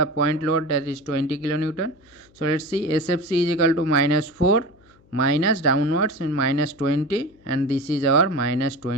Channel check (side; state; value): left; noise; hum, 30 dB below the sound